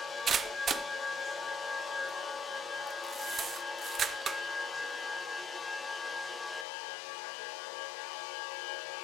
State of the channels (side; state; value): right; drops out; at 6.7 s